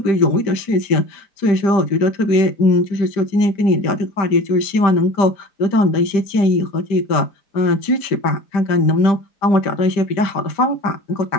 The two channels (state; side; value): late; right; 5.0 ms